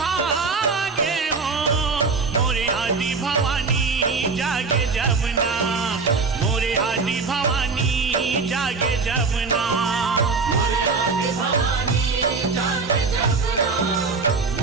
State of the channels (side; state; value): left; quieter; 4.5 dB